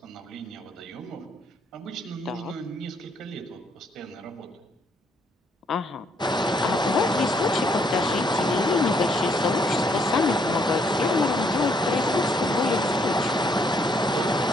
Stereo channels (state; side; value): normal; both; correlation 0.70